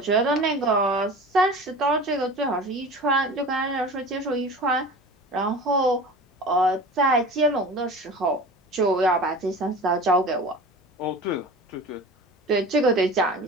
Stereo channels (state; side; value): normal; both; correlation 0.37